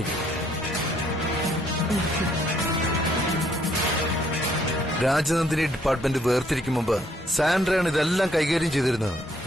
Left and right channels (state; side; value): normal; both; correlation 0.68